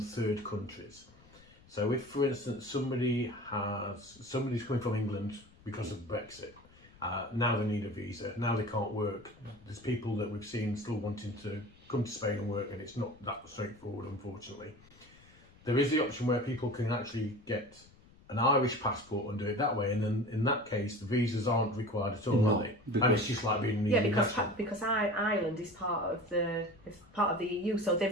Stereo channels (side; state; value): left; noise; rumble, 26 dB below the sound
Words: third countries. So if, for instance, somebody's coming from England because of Brexit, now they need a visa, now they can't work. There's people that we've seen still wanting to come to Spain and work, and it's not that straightforward, unfortunately. There is the option where people can actually get an Irish passport and do it that way, and then in that case the visas aren't required at all, are they? And it's just like being because Ireland is part of the EU, so